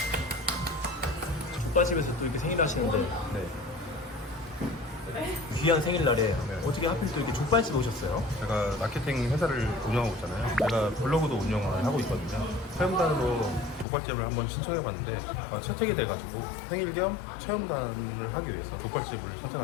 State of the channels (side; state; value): right; drops out; at 13.9 s